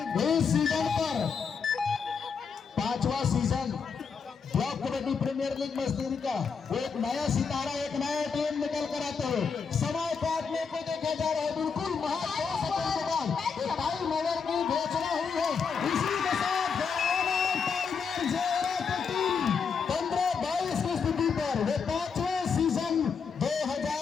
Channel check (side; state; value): right; quieter; 5.8 dB